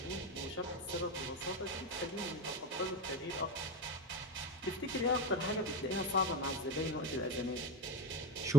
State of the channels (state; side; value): normal; both; correlation 0.26